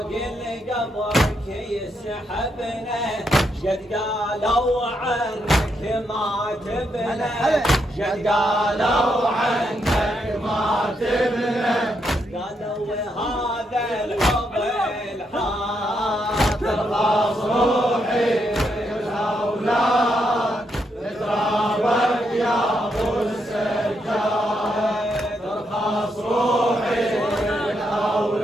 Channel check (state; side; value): normal; both; correlation 0.79